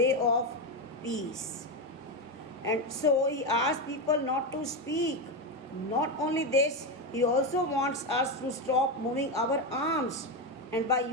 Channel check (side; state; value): both; normal; correlation 0.11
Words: of peace. And so he asks people not to speak. Not only this, he also wants us to stop moving our arms. And by